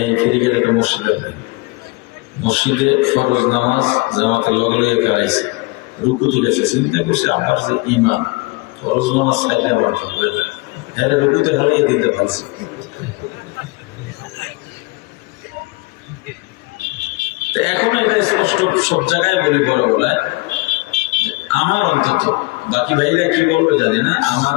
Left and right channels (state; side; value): quieter; right; 24.9 dB